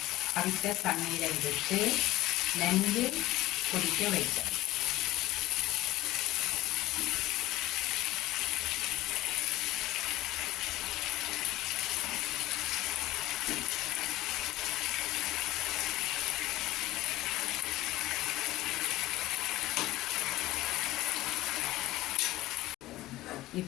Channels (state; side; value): quieter; right; 16.6 dB